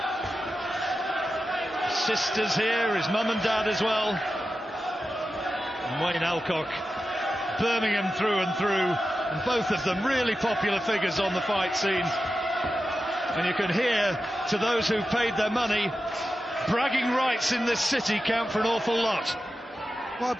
sisters here, his mum and dad as well. And Wayne Elcock, Birmingham through and through, and both of them really popular figures on the fight scene. And you can hear, to those who've paid their money, bragging rights in this city count for an awful lot. Well, I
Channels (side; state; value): both; normal; correlation 0.92